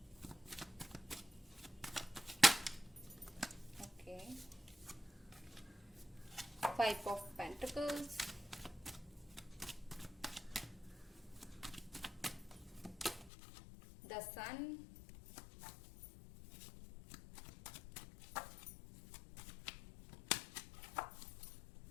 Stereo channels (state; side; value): drops out; right; at 13.3 s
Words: Okay, 5 of pentacles, the sun,